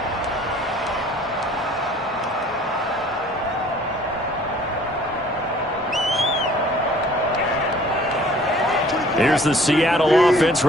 Here's the Seattle offense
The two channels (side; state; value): both; normal; correlation 0.53